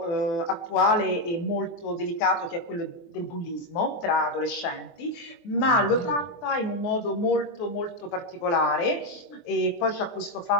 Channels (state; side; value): late; right; 23 ms